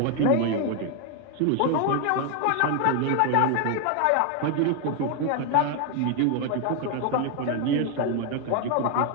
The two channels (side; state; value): both; different; correlation 0.01